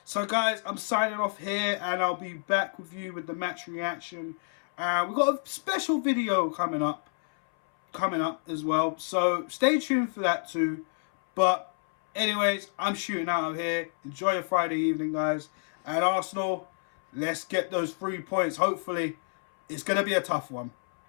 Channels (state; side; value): silent; right; 59 dB below the other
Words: So, guys, I'm signing off here. And I'll be back with you with the match reaction. We've got a special video coming up as well. So, stay tuned for that too. But anyways, I'm shooting out of here. Enjoy your Friday evening, guys. And Arsenal, let's get those 3 points, hopefully, It's going to be a tough one.